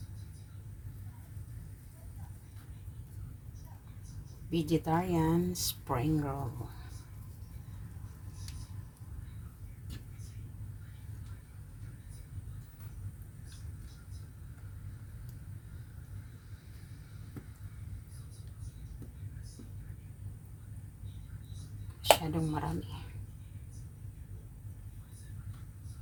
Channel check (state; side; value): identical; both; correlation 1.00